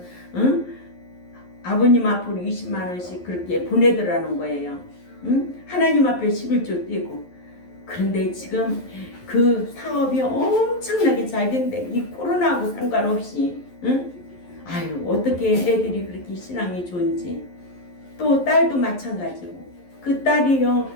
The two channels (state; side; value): late; right; 11 ms